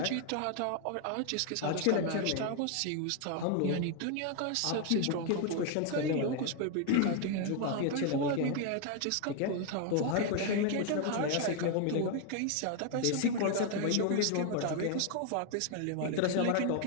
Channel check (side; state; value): both; different; correlation 0.00